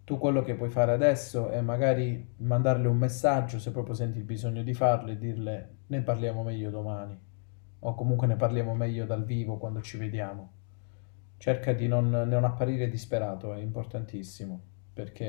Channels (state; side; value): silent; right; 58 dB below the other